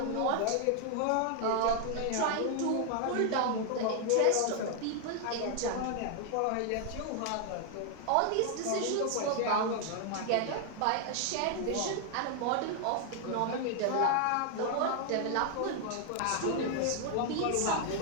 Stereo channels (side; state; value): both; different; correlation 0.00